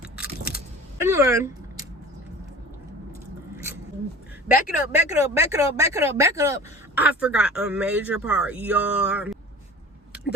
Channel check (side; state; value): both; normal; correlation 0.39